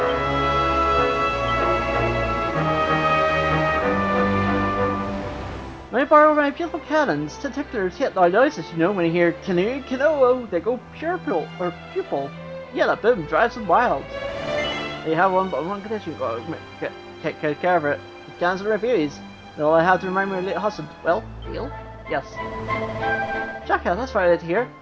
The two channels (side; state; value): both; identical; correlation 1.00